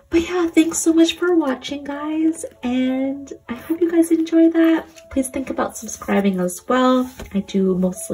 But yeah, thanks so much for watching, guys. And I hope you guys enjoy that. Please think about subscribing as well. I do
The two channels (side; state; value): both; identical; correlation 1.00